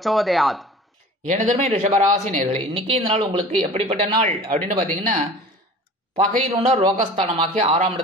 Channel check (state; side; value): normal; both; correlation 0.41